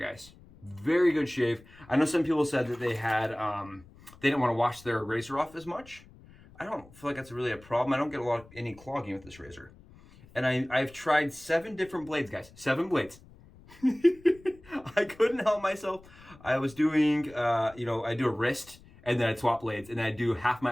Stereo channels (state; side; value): noise; left; rumble, 23 dB below the sound